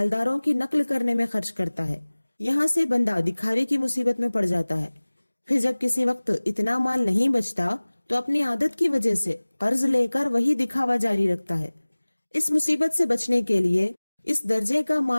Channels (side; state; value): both; inverted; correlation -1.00